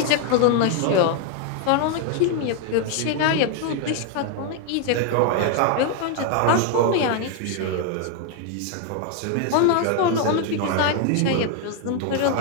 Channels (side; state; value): both; different; correlation 0.00